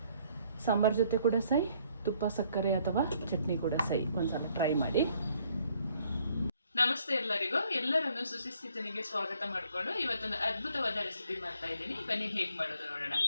ಸಾಂಬಾರು ಜೊತೆ ಕೂಡ ಸೈ, ತುಪ್ಪ ಸಕ್ಕರೆ ಅಥವಾ ಚಟ್ನಿ ಕೂಡ ಸೈ, ಒಂದ್ಸಲ ಟ್ರೈ ಮಾಡಿ. ನಮಸ್ತೆ ಎಲ್ಲರಿಗೂ, ಎಲ್ಲರನ್ನು ಸುಶಿಸ್ತಿತನಿಗೆ ಸ್ವಾಗತ ಮಾಡಿಕೊಂಡು ಇವತ್ತೊಂದು ಅದ್ಭುತವಾದ ರೆಸಿಪಿ ಮಾಡ್ತಾ ಇದ್ದೀನಿ. ಬನ್ನಿ ಹೇಗೆ ಮಾಡೋದು ನೋಡೋಣ.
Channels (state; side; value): inverted; both; correlation -0.65